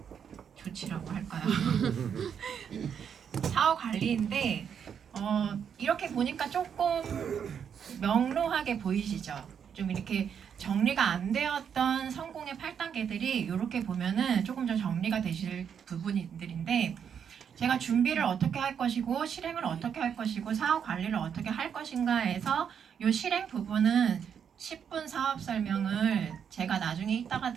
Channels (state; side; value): quieter; left; 7.7 dB